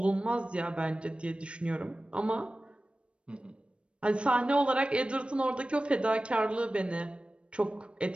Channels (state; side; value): late; left; 0.059 ms